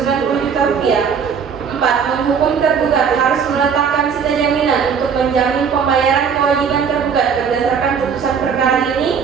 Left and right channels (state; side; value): quieter; left; 6.6 dB